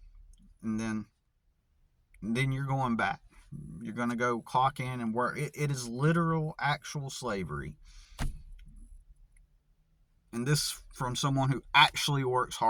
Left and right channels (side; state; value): both; identical; correlation 1.00